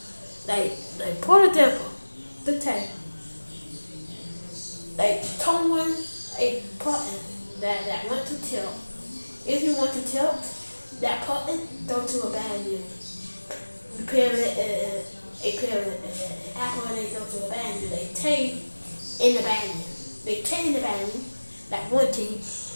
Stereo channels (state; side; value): inverted; both; correlation -1.00